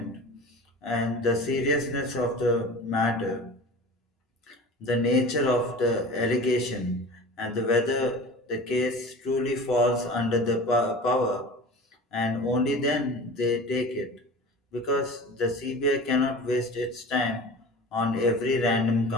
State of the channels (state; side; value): normal; both; correlation 0.37